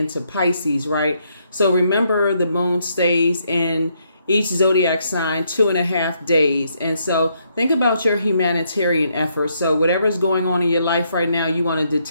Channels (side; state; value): both; inverted; correlation -0.75